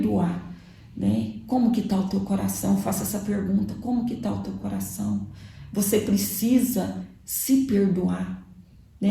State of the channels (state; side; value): identical; both; correlation 1.00